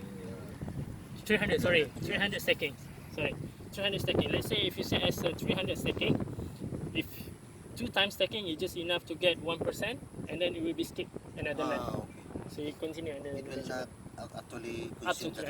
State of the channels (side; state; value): both; identical; correlation 1.00